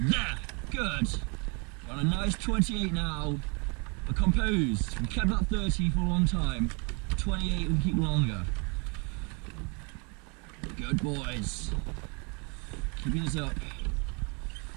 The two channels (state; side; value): quieter; left; 33.3 dB